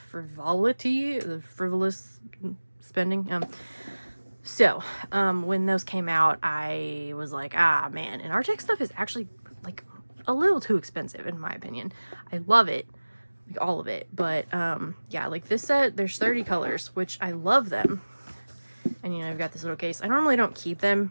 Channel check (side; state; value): both; inverted; correlation -1.00